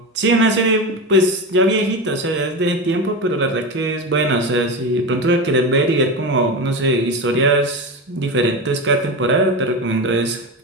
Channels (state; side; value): normal; both; correlation 0.21